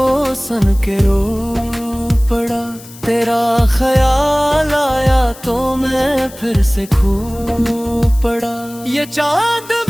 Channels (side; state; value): left; noise; hiss, 19 dB below the sound